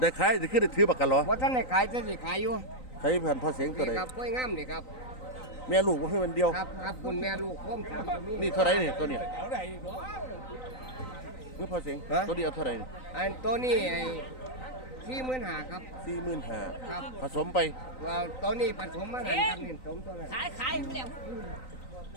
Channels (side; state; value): right; late; 3.9 ms